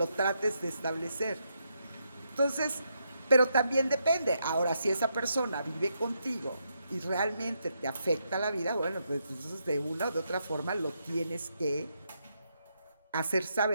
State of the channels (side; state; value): both; inverted; correlation -0.80